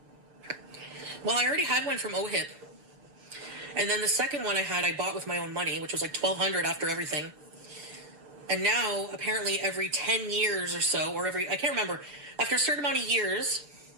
Well, I already had one from OHIP. And then the second one I bought with my own money, which was like $1,200 after everything. And now, apparently every 10 years or so, or I can't remember, after a certain amount of years,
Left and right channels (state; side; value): late; left; 6.9 ms